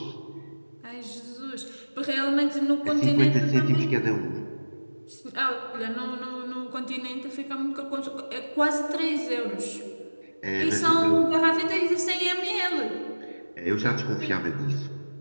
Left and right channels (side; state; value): both; inverted; correlation -1.00